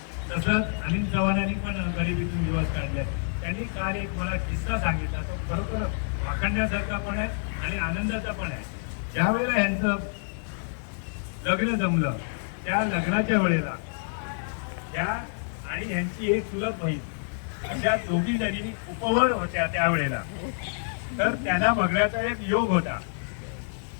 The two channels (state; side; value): silent; right; digital silence